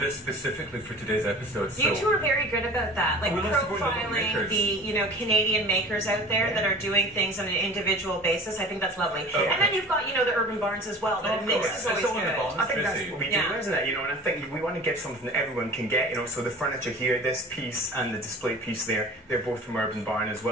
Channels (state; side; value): normal; both; correlation 0.42